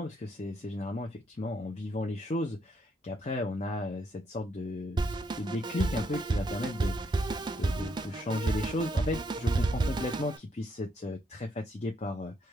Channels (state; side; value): normal; both; correlation 0.75